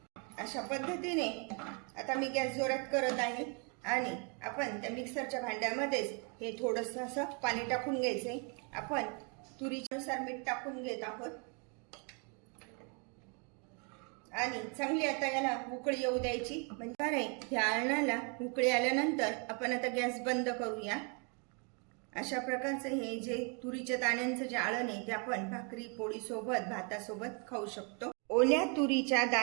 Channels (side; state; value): left; quieter; 35.8 dB